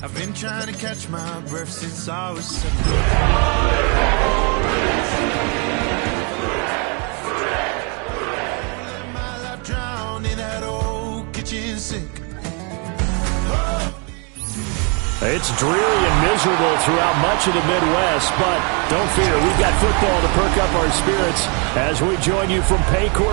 I've been trying to catch my breath since I was 7. My life drowned in that old kitchen sink. It's dreary and miserable throughout much of the Midwest, but don't fear, we've got football to perk up our spirits as we join you from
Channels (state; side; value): quieter; left; 35.0 dB